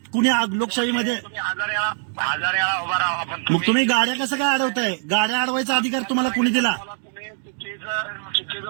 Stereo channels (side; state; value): left; silent; 57 dB below the other